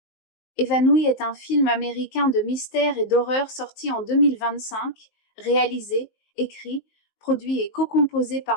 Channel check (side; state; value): right; late; 19 ms